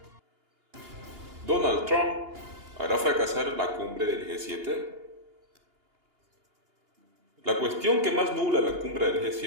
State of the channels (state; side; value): late; left; 2.8 ms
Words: ¿Donald Trump hará fracasar la cumbre del G7? La cuestión que más nubla la cumbre del